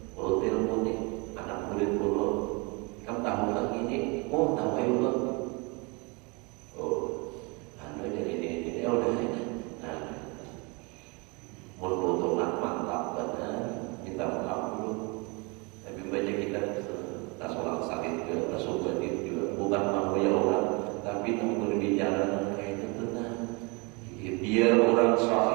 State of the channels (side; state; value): left; quieter; 29.5 dB